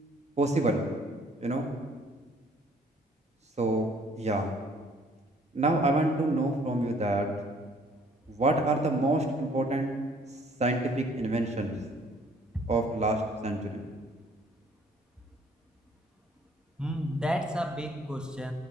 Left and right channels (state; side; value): normal; both; correlation 0.60